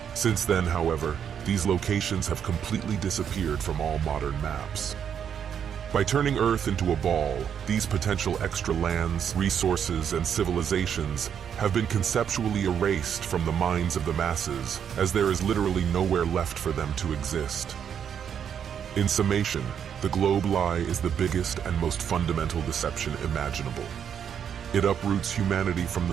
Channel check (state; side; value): quieter; left; 8.3 dB